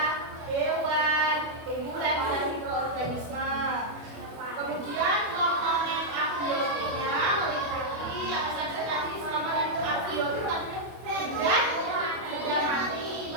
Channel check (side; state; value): left; late; 25 ms